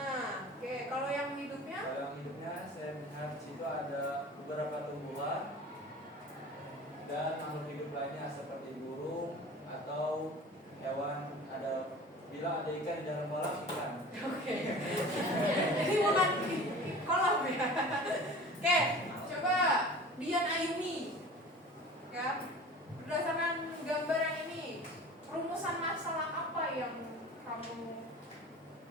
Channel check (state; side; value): normal; both; correlation 0.40